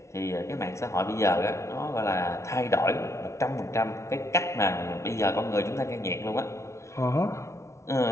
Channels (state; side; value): late; right; 0.14 ms